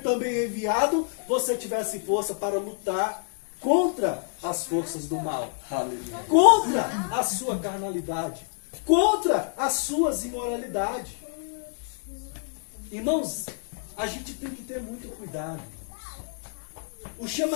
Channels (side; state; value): right; silent; 60 dB below the other